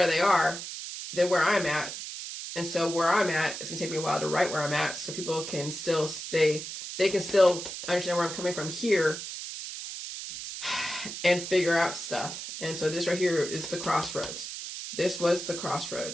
they are than where I'm at. And so where I'm at, it's gonna take me a while to write where I'm at, so people can still they can still understand where I'm coming from here and figure out stuff. And so this right here is the crossroads. This was the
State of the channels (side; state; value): right; noise; hiss, 8 dB below the sound